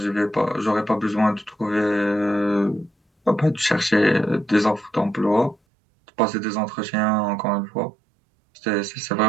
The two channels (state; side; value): drops out; left; at 5.6 s